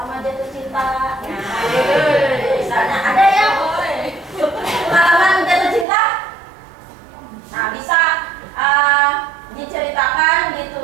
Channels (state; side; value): drops out; left; at 5.9 s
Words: jatuh cinta, misalnya ada yang pengalaman jatuh cinta. Nah, bisa diceritakan,